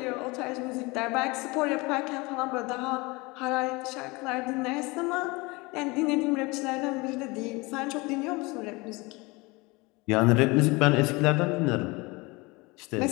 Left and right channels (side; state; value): right; quieter; 24.9 dB